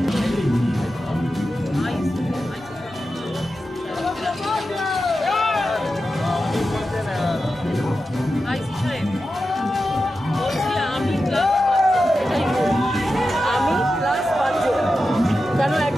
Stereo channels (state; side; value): normal; both; correlation 0.91